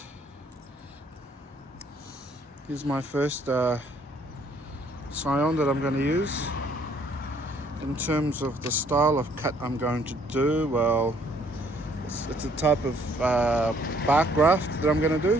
Here's my first scion that I'm going to use. In terms of the style of cut I'm going to do, well, it's a type of bark graft that I'm going to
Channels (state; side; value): normal; both; correlation 0.63